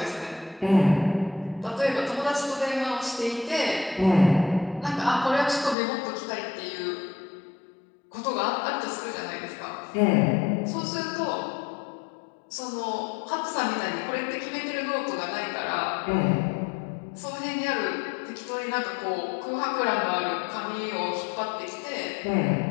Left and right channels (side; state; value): right; drops out; at 5.8 s